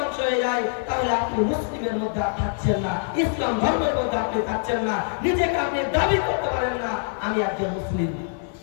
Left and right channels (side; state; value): right; silent; 62 dB below the other